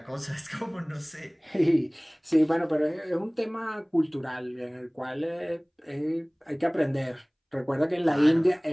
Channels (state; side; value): identical; both; correlation 1.00